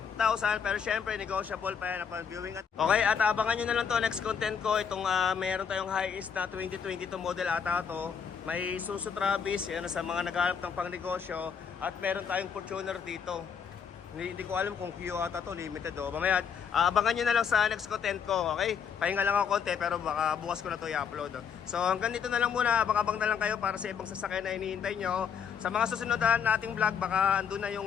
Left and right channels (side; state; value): right; quieter; 7.0 dB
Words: pero syempre, negotiable pa yan upon viewing. Okay, at abangan nyo na lang to next content ko, itong meron tayong high-ist na 2022 model ata to. May Isuzu Travis, yan sa mga naghahanap ng pangnegosyo. At meron tayong Fortuner dito. Hindi ko alam kung Q ata to, limited o. Mamaya, abangan nyo na lang sa next content ko, okay? Pahinga lang ako konti pero baka bukas ko na to i-upload. So hanggang dito na lang muna, abang-abang na lang kayo para sa ibang sasakyan na hinihintay nyo. Sa mga susunod nating vlog, baka andun na